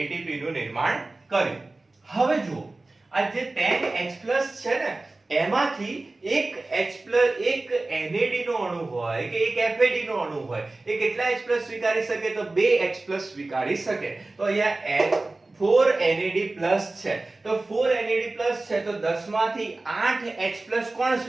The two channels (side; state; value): left; quieter; 3.1 dB